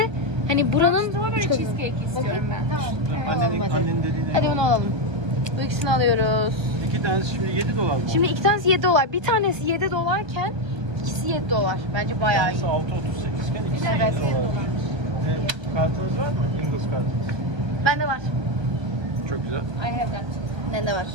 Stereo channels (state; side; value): late; left; 1.3 ms